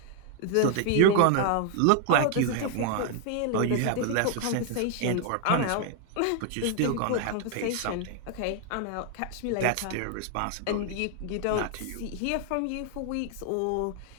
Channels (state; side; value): different; both; correlation 0.00